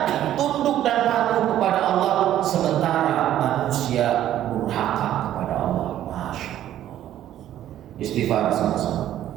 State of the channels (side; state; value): left; quieter; 12.1 dB